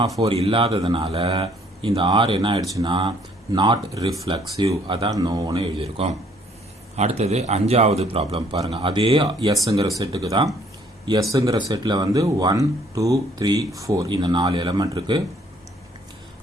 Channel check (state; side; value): normal; both; correlation 0.62